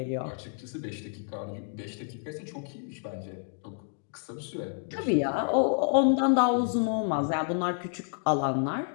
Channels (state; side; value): silent; right; 58 dB below the other